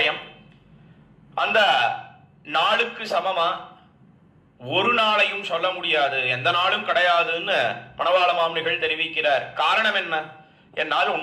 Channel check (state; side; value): identical; both; correlation 1.00